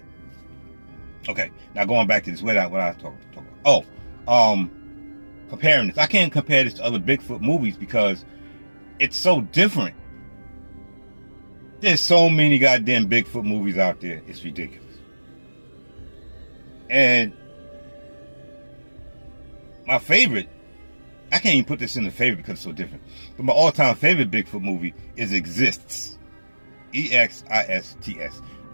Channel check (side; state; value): both; inverted; correlation -1.00